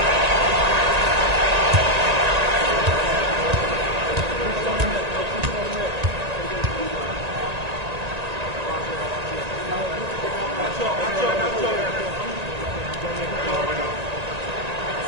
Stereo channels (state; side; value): late; left; 1.9 ms